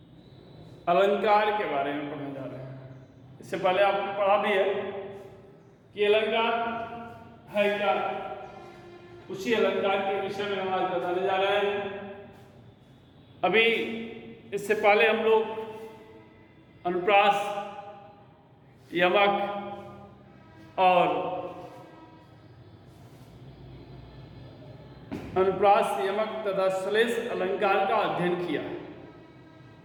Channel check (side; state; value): both; identical; correlation 1.00